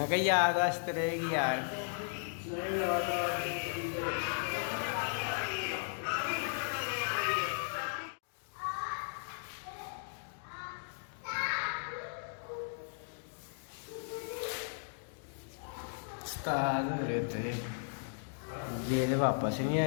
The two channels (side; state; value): right; silent; digital silence